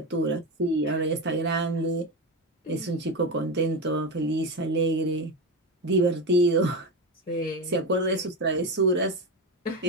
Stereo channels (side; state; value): both; normal; correlation 0.18